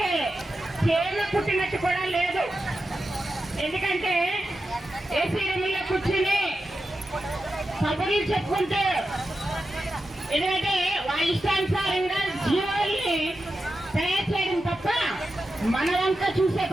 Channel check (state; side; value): normal; both; correlation 0.90